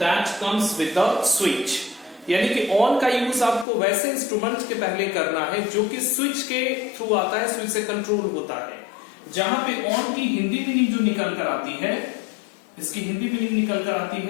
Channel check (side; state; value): right; drops out; at 3.7 s